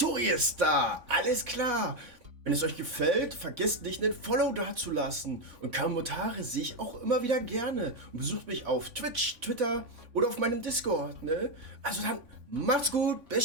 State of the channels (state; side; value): late; left; 3.5 ms